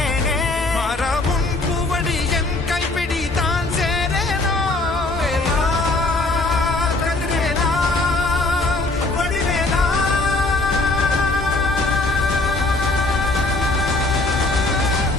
மாறாவும் பூவடி என் கைப்பிடி தான் சேரேனோ கதிரேலா வடிவேலா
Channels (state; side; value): quieter; right; 3.0 dB